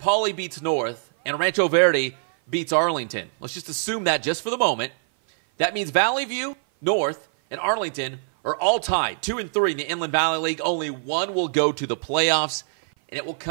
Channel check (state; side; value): silent; left; 57 dB below the other